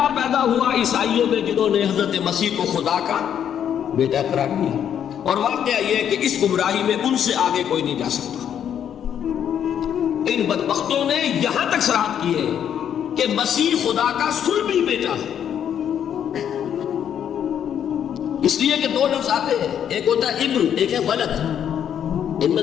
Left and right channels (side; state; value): right; quieter; 9.2 dB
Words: پیدا ہوا عیسائیوں میں جنہوں نے حضرت مسیح کو خدا کا بیٹا قرار دیا۔ اور واقعہ یہ ہے کہ اس گمراہی میں ان سے آگے کوئی نہیں جا سکتا۔ ان بدبختوں نے یہاں تک صراحت کی ہے کہ مسیح خدا کا صلبی بیٹا ہے، اس لیے کہ 2 لفظ آتے ہیں، ایک ہوتا ہے ابن، ایک ہے ولد، ان میں